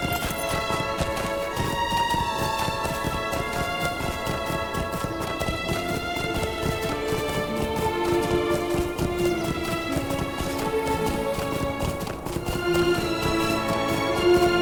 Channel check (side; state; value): both; identical; correlation 1.00